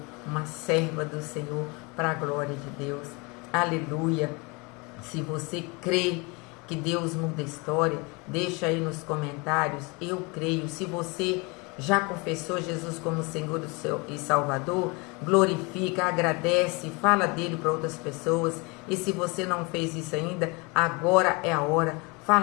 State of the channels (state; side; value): quieter; right; 28.4 dB